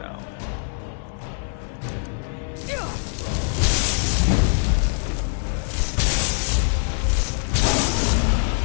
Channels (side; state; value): right; silent; 63 dB below the other